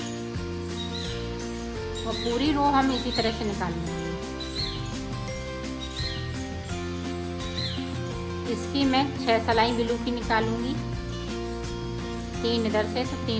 और पूरी रो हम इसी तरह से निकाल लेंगे। इसकी मैं 6 सिलाई ब्लू की निकालूंगी, 3 इधर से तो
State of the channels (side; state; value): both; identical; correlation 1.00